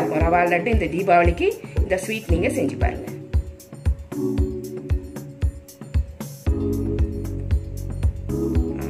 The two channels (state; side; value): identical; both; correlation 1.00